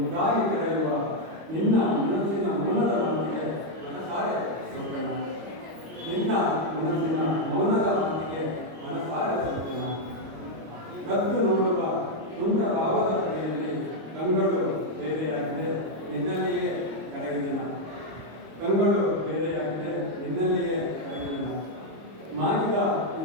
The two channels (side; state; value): left; late; 25 ms